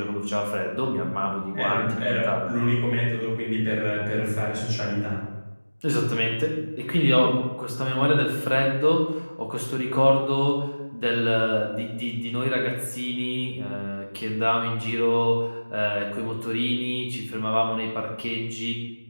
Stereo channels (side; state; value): both; inverted; correlation -1.00